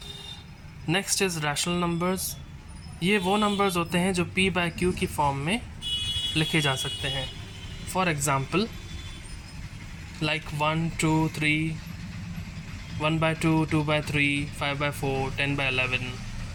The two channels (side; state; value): both; identical; correlation 1.00